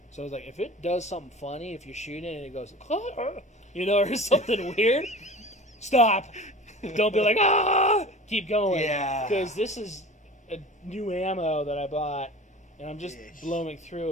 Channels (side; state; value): both; normal; correlation 0.39